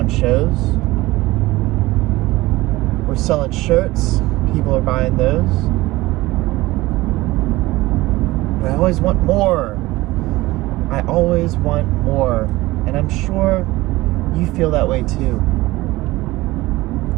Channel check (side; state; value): left; quieter; 19.2 dB